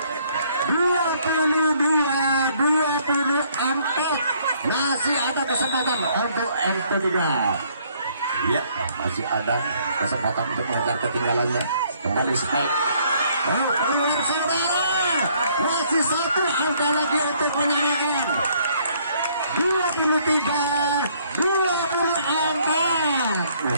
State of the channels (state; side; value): inverted; both; correlation -0.64